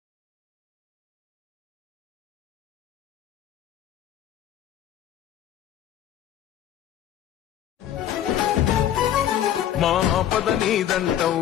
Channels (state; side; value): quieter; right; 11.1 dB